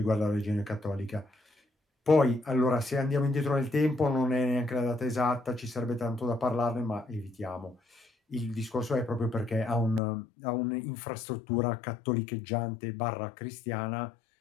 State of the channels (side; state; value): right; drops out; at 10.0 s